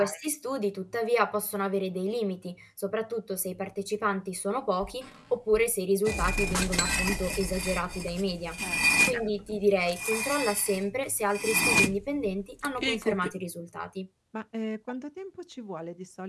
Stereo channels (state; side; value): identical; both; correlation 1.00